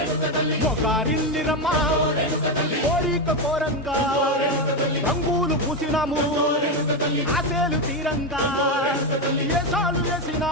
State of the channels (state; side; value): normal; both; correlation 0.10